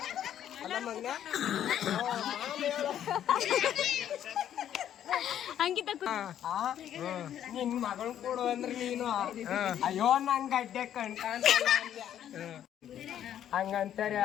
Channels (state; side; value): quieter; right; 10.5 dB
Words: ಅಲ್ಲ ಮಗನ ಅಂಕಿತ ನಿನ್ ಮಗಳು ಕೊಡು ಅಂದ್ರೆ ನೀನು ಅಯ್ಯೋ ನಂಗೆ ಗಡ್ಡೆ ಕಣ್ಕಾಂತಲ್ಲ ಹಂಗಂತಾರ.